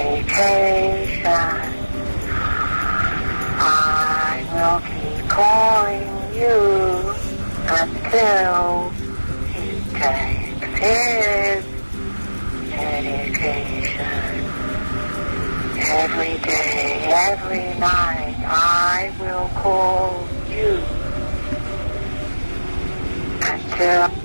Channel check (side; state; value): both; inverted; correlation -1.00